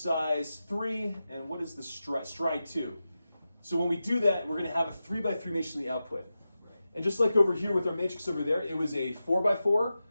3, and what is the stride 2? So when we do that, we're going to have a 3 by 3 matrix in the output. And just like over here with our matrix over there, it was a 4 by 4,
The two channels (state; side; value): inverted; both; correlation -0.92